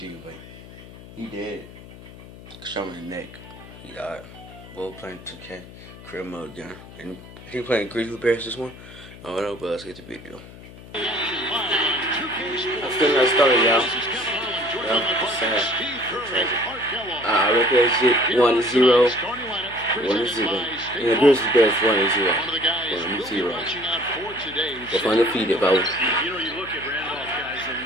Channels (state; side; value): noise; left; hum, 18 dB below the sound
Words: but he dead. Shot him in the neck. He died. Both playing 2K, career mode again. And I think playing Grizzly Bears this one. I don't know, but let's get the video. I'm still not started, y'all. It's sad. I reckon that shit 1-0. 1-0. And the Grizzly Bears 1-0. 1-0. They're undefeated, bro. You know, you look at Randolph, guys, and